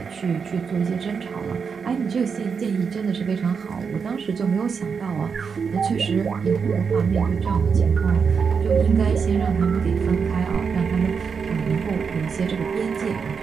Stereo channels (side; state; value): left; quieter; 5.9 dB